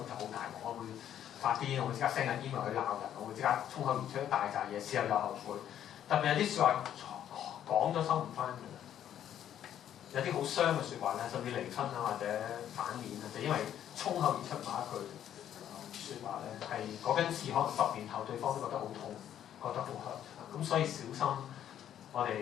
就好大鑊，我會發癲，我會即刻 send 緊 email 去鬧人，我會即刻衝口而出一大扎嘢，事後又後悔。特別有啲説話講咗收唔翻嘅，有啲好傷嘅説話咧，甚至離婚啊或者反面啊，就因為衝口而出某一句説話咧，係嗰根刺可能10年後對方都覺得好痛，覺得好 hurt，咁所以小心我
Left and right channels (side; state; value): right; quieter; 10.4 dB